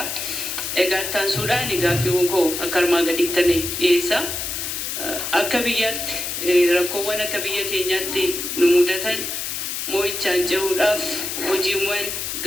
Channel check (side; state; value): left; noise; hiss, 4 dB below the sound